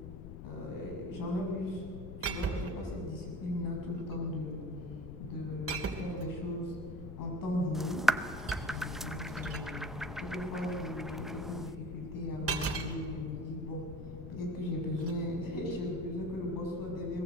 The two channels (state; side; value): noise; left; rumble, 9 dB below the sound